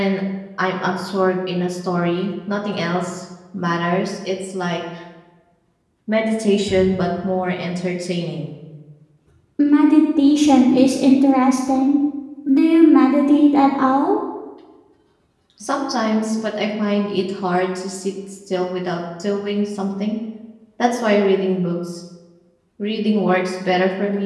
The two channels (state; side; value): identical; both; correlation 1.00